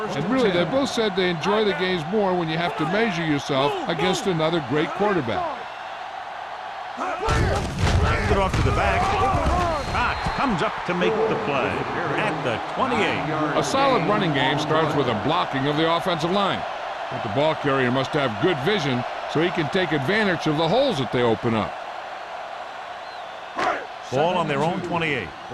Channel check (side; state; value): both; identical; correlation 1.00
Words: really they both said they enjoy the games more when you have to measure yourself against another great quarterback. Hands it off to the back. Cox comes up to make the play at the 28. A solid running game starts with a blocking of the offensive line. But the ball carrier must have good vision so he can take advantage of the holes that they open up. Ball on their own 28.